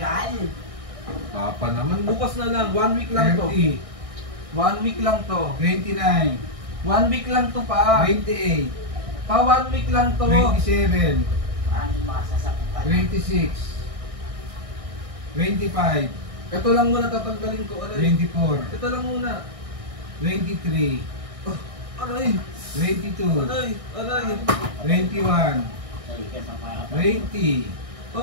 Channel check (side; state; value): left; late; 1.6 ms